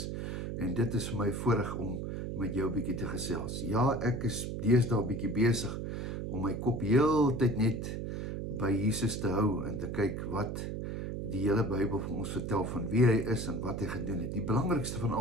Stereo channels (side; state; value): right; noise; hum, 4 dB below the sound